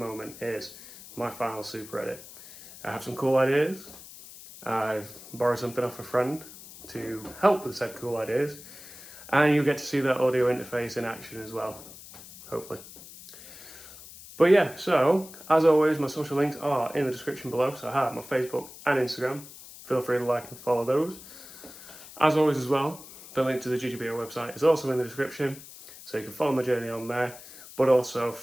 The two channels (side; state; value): left; noise; hiss, 17 dB below the sound